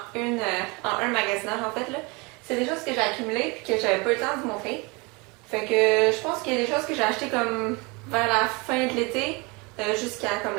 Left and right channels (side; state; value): left; quieter; 27.6 dB